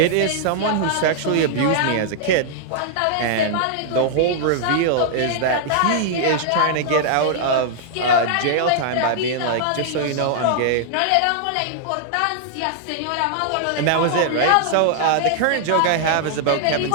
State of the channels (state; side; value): different; both; correlation -0.01